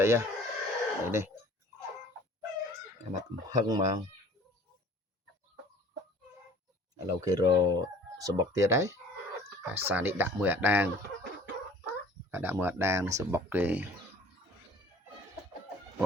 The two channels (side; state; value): both; normal; correlation 0.49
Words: ័យនេះមកកំហឹងមកឥឡូវគេរកសបុកទៀតហើយអាសានេះដាក់មួយអាដាងសបុកគេប